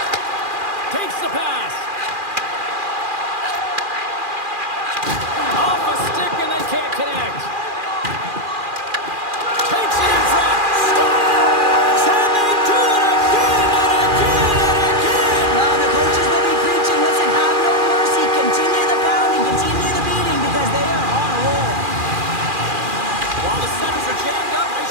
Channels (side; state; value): left; late; 2.4 ms